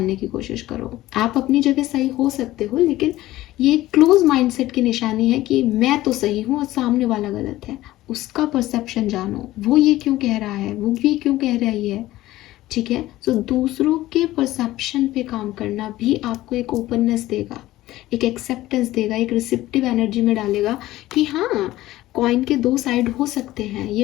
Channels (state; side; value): quieter; right; 16.2 dB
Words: की कोशिश करो। आप अपनी जगह सही हो सकते हो, लेकिन ये क्लोज माइंडसेट की निशानी है कि मैं तो सही हूँ और सामने वाला गलत है। उसका परसेप्शन जानो, वो ये क्यों कह रहा है, वो भी क्यों कह रही है। ठीक है, सो दूसरों के परसेप्शन पे काम करना भी आपको एक ओपननेस देगा, एक एक्सेप्टेंस देगा, एक रिसेप्टिव एनर्जी में डालेगा कि हाँ, कॉइन के दो साइड हो सकते हैं,